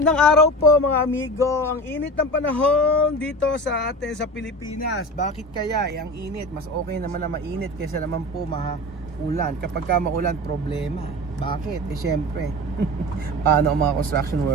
araw po mga amigo. Ang init ng panahon dito sa atin sa Pilipinas. Bakit kaya? Ang init, mas okay naman na mainit kaysa naman po ulan. Kapag ka maulan, problema. Bakit? Syempre. Paano ang mga construction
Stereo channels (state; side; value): normal; both; correlation 0.31